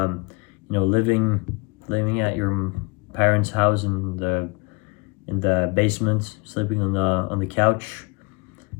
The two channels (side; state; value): right; quieter; 26.1 dB